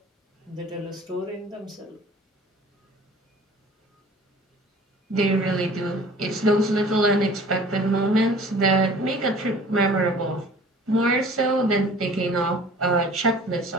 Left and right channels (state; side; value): normal; both; correlation 0.48